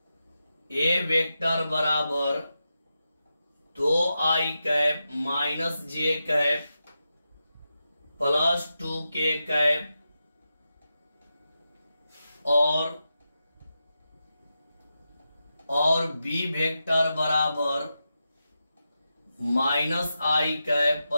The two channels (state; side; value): inverted; both; correlation -0.89